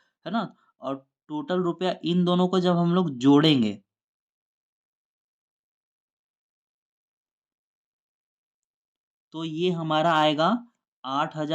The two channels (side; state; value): both; identical; correlation 1.00